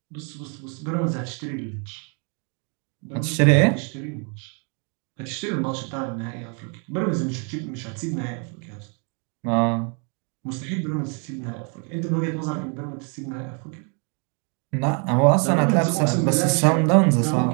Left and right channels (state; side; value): quieter; left; 37.6 dB